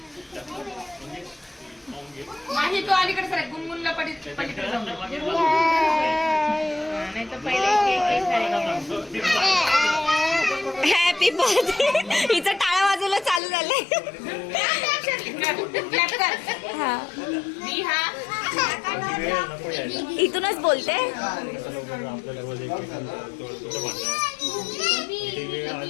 माझी तो अलीकडे सर गुनगुनला पलीकडे जाऊ. नाही तर पहिले हॅपी बर्थडे. हिचं टाळा वाजवलं चालू झालंय. इथूनच बोलते.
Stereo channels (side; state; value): right; drops out; at 13.4 s